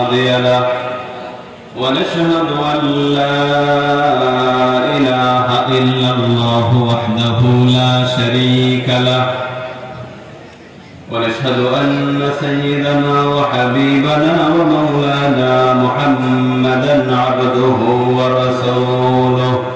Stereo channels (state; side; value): identical; both; correlation 1.00